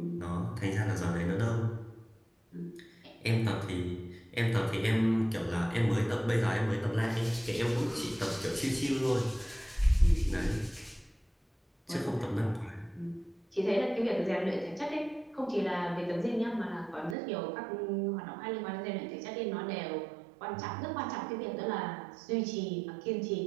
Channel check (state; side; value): drops out; left; at 17.2 s